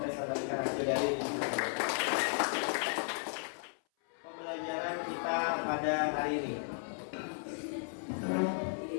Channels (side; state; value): right; silent; 54 dB below the other